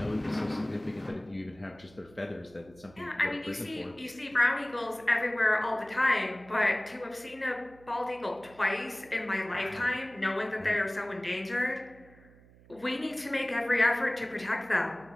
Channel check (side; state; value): right; noise; hum, 25 dB below the sound